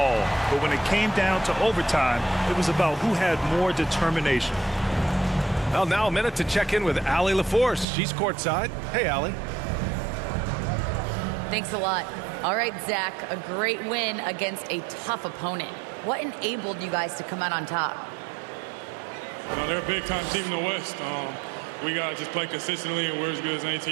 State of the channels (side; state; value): left; drops out; at 7.9 s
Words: But when it came down to overtime, it was about who had more determination. Well, now a minute to check in with Allie LaForce. She's courtside. Hey, Allie. Thanks a lot. All right, Zach, a great win against a tough opponent. What enabled you guys to come out on top? They're a big-time team in the West. We got to just play consistently, and we're as good as any